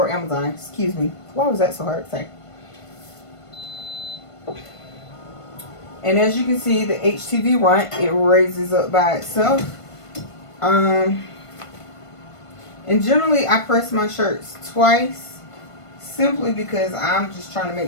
Amazon. Excuse me. Why was that so hard to say? And as you can see, the HTV Runt, it raises up by itself. And generally, I press my shirts twice, simply because I'm just trying to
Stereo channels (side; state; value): right; late; 1.5 ms